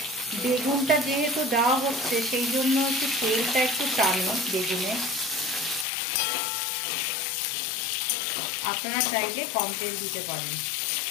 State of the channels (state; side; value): drops out; right; at 5.9 s